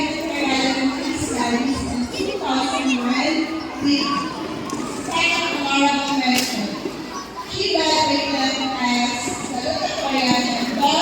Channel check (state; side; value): identical; both; correlation 1.00